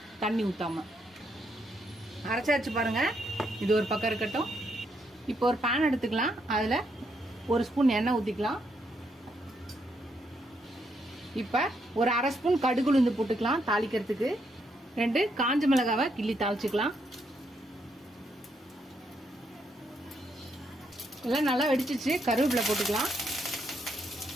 தண்ணி ஊற்றாம. அரைச்சாச்சு பாருங்க. இது ஒரு பக்கம் இருக்கட்டும். இப்போ ஒரு பேன் எடுத்துக்கலாம். அதில் 1 ஸ்பூன் எண்ணெய் ஊற்றிக்கலாம். இப்போ ஒரு 1/2 ஸ்பூன் கடுகு உளுந்து போட்டுக்கலாம் தாளிக்கிறதுக்கு. 2 காஞ்ச மிளகாவை கிள்ளி தாளிச்சுக்கலாம். எல்லாம் நல்லா வெடிச்சிச்சு. கருவேப்பிலை போட்டுக்கலாம்.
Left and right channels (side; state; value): both; normal; correlation 0.76